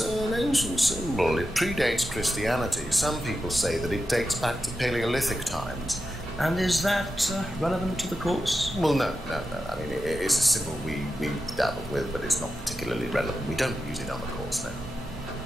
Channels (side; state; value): both; normal; correlation 0.90